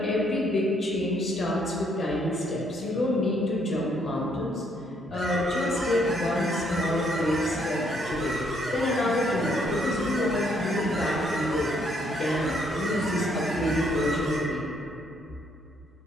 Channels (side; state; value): both; normal; correlation 0.70